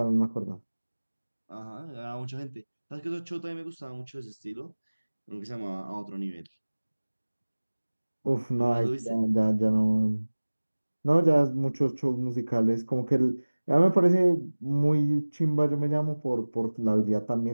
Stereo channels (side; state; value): both; inverted; correlation -1.00